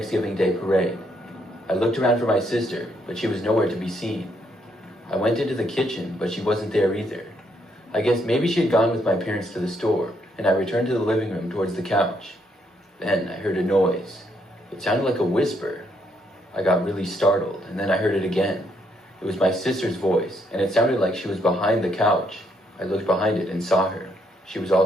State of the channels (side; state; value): both; normal; correlation 0.73